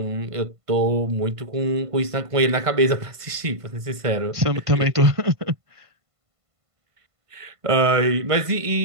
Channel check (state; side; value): late; left; 1.5 ms